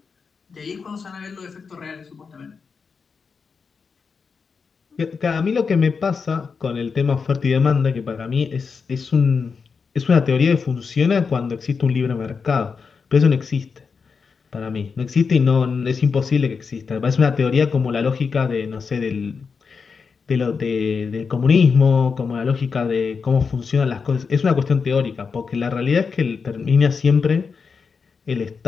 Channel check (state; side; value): quieter; right; 5.4 dB